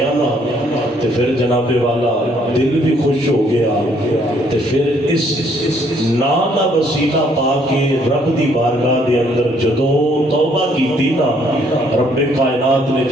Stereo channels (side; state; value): both; normal; correlation 0.66